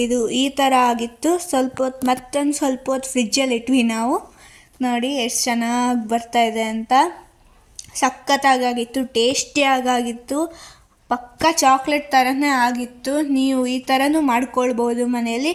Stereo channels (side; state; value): both; identical; correlation 1.00